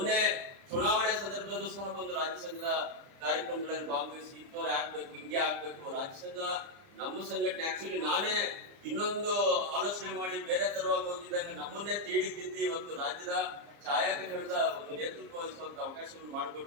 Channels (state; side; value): late; left; 30 ms